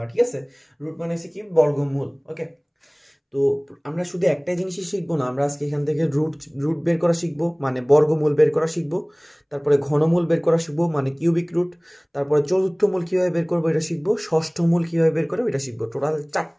ঠিক আছে, রুট মানে হচ্ছে কি বর্গমূল। ওকে, তো আমরা শুধু একটাই জিনিসই শিখবো না, আমরা আজকে এখান থেকে রুট রুট বের করা শিখবো, মানে বর্গমূল বের করা শিখবো। তারপরে ঘনমূল বের করা শিখবো, মানে কিউবিক রুট। তারপরে চতুর্থ মূল কীভাবে বের করবো এটা শিখবো, ষষ্ঠ মূল কীভাবে বের করবো এটা শিখবো। টোটাল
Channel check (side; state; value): both; identical; correlation 1.00